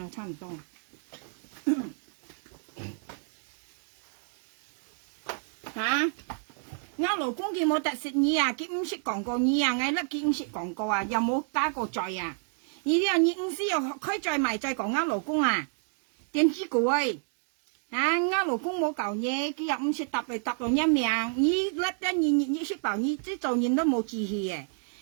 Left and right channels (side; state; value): left; silent; 58 dB below the other